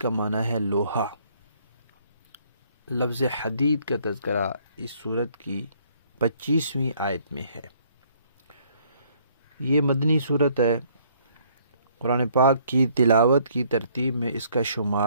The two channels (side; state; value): both; inverted; correlation -0.63